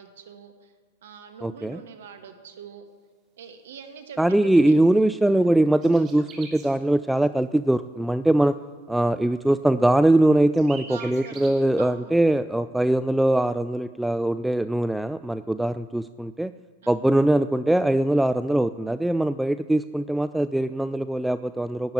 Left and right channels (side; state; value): both; normal; correlation 0.96